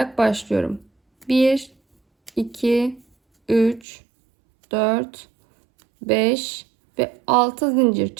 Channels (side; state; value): left; drops out; at 3.9 s